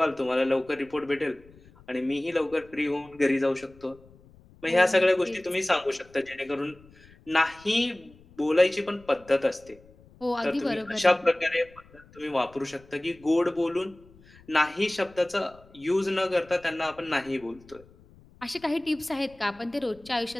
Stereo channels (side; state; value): left; noise; rumble, 25 dB below the sound